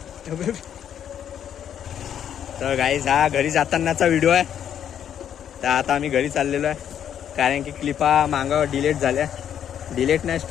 तर गाईज हा घरी जातानाचा व्हिडिओ आहे. तर आता आम्ही घरी चाललेलो आहे कारण की क्लिपा मागं डिलीट झाल्या. डिलीट नाही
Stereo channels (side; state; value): right; quieter; 9.4 dB